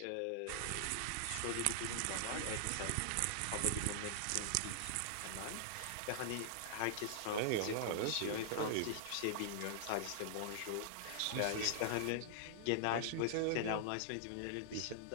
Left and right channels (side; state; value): both; different; correlation -0.01